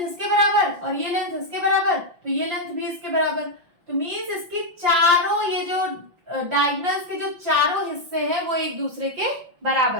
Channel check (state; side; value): late; left; 5.7 ms